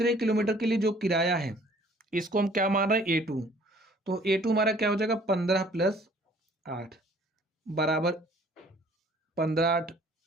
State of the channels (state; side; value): normal; both; correlation 0.56